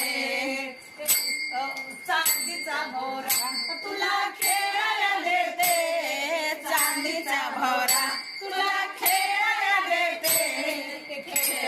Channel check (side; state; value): both; identical; correlation 1.00